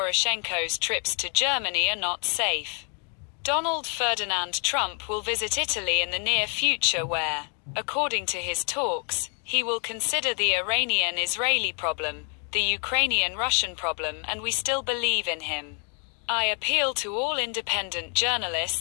trips to Germany are not safe. Donald Ferdinand Trump will visit Italy in the near future where, according to his talks, he will consider the Iranian-Israeli problem, the Ukrainian-Russian problem, and we still believe in him. I appeal to all independent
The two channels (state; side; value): quieter; right; 36.4 dB